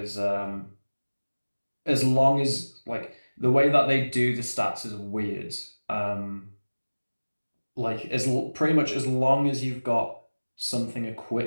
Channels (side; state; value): both; inverted; correlation -1.00